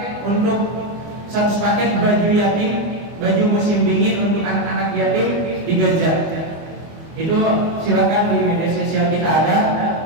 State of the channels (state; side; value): late; left; 24 ms